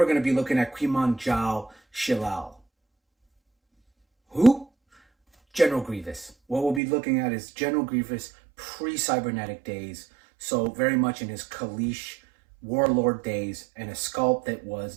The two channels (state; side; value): drops out; left; at 6.8 s